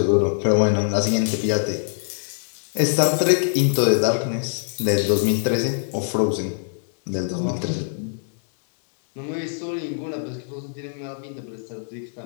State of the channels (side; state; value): right; silent; 63 dB below the other